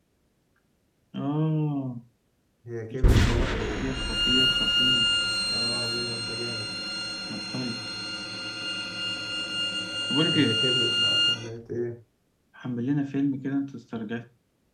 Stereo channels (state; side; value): identical; both; correlation 1.00